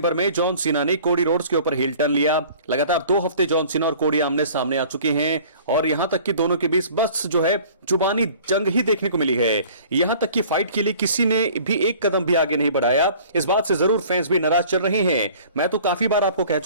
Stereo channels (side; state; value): both; inverted; correlation -0.48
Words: में जॉन सीना ने कोडी रोड्स के ऊपर हिल टर्न लिया। लगातार 2 हफ्ते जॉन सीना और कोडी आमने सामने आ चुके हैं और यहां तक कि दोनों के बीच बस जो है जुबानी जंग ही देखने को मिली है। यहां तक कि फाइट के लिए किसी ने भी एक कदम भी आगे नहीं बढ़ाया। इस बात से जरूर फैंस भी नाराज चल रहे हैं। मैं तो काफी बार आपको कह